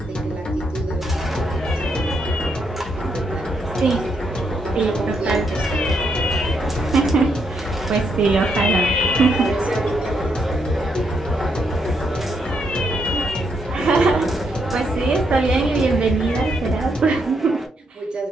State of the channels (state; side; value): normal; both; correlation 0.77